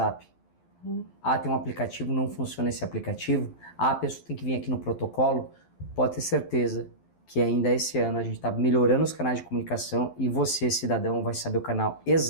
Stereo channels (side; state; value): right; late; 12 ms